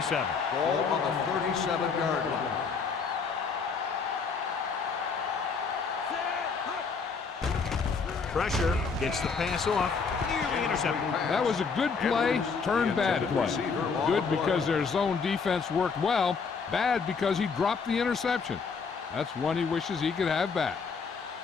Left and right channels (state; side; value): quieter; right; 5.3 dB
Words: Ball on the 37-yard line. Pressure gets the pass off. Nearly intercepted. That was a good play, turned bad play. Good because their zone defense worked well. Bad because he dropped the interception. That's one he wishes he could have back.